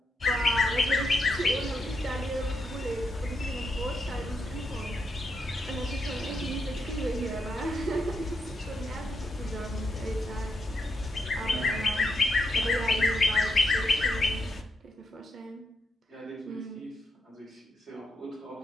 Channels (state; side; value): normal; both; correlation 0.82